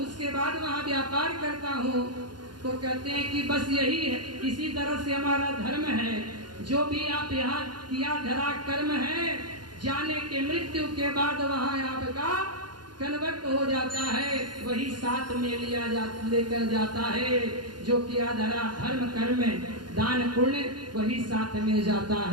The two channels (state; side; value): late; left; 0.71 ms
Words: बाद वहाँ व्यापार करता हूँ। तो कहते हैं कि बस यही है, इसी तरह से हमारा धर्म है। जो भी आप यहाँ किया धरा कर्म है, जाने के मृत्यु के बाद वहाँ आपका कन्वर्ट हो जाता है, वही साथ में लेकर जाता है। जो किया धरा धर्म कर्म दान पुण्य वही साथ में जाता